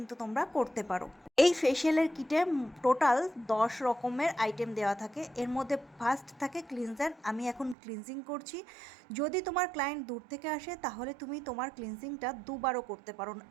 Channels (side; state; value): left; drops out; at 7.8 s